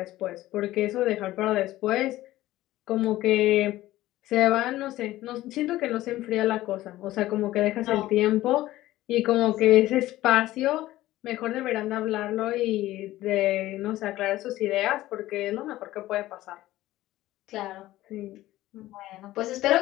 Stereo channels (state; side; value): quieter; right; 15.9 dB